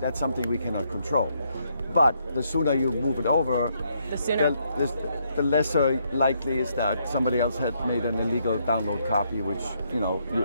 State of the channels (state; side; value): inverted; both; correlation -0.74